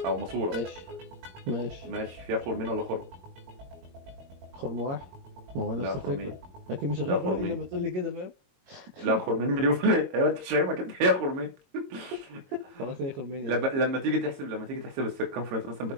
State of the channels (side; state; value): left; late; 22 ms